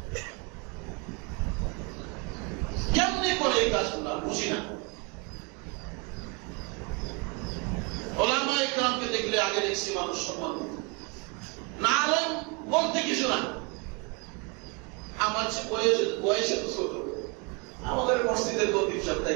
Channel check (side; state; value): left; quieter; 32.0 dB